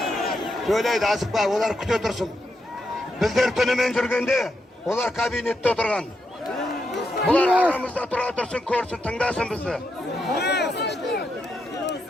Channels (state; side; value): normal; both; correlation 0.82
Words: Söyleydi asıkpa, olar küte dursun. Bizler tünümen жүргенде, olar kabinette oturgan. Bular aramızda tura dursun, ko'rsin, tingdasin bizni.